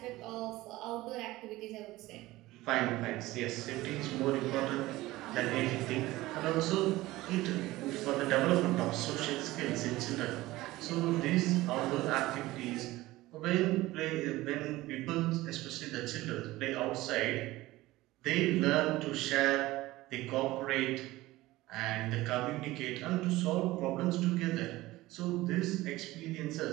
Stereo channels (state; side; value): quieter; left; 18.1 dB